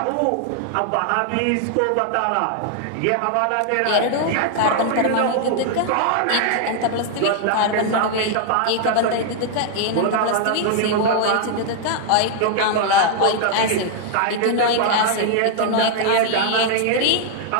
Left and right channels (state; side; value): different; both; correlation 0.00